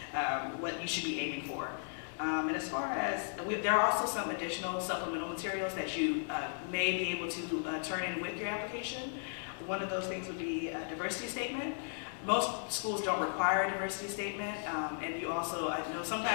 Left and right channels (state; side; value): silent; right; digital silence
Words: what you should be aiming for. And as far as, there are also some additional supplemental materials that you may be able to turn in with your application. One of those things would be a diversity statement. Most schools don't require a diversity statement, and you also, I know